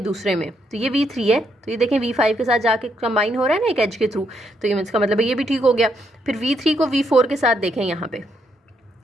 दूसरे में, तो ये V3 है, तो ये देखें V5 के साथ जाके कंबाइन हो रहा है ना एक एज के थ्रू, तो ये इसका मतलब है ये भी ठीक हो गया। फिर V3 को V4 के साथ देखें, यहाँ पे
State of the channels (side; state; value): both; normal; correlation 0.76